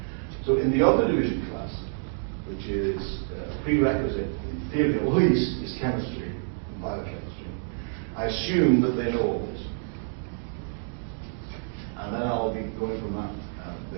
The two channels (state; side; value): silent; left; digital silence